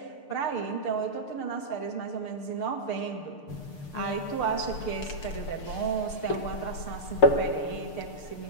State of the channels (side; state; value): right; late; 6.7 ms